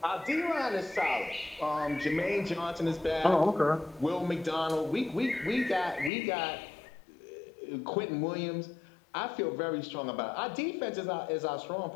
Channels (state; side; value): drops out; right; at 6.1 s